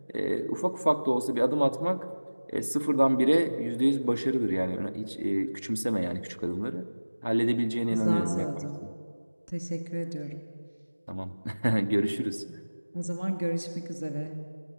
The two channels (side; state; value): both; inverted; correlation -1.00